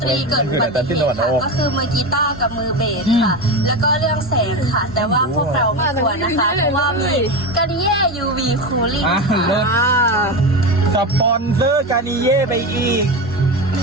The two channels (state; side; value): normal; both; correlation 0.20